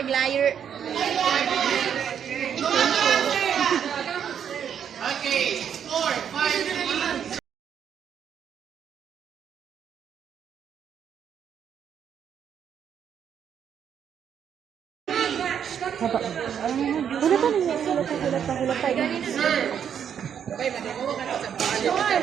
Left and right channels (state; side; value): quieter; left; 8.4 dB